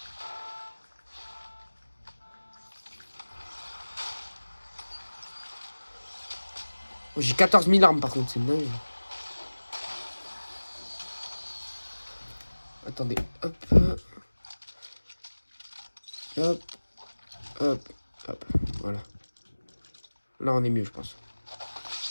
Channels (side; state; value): both; inverted; correlation -1.00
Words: Oh, j'ai 14 000 armes par contre, c'est dingue. Attendez, hop. Hop. Hop. Hop. Voilà. Là on est mieux je pense.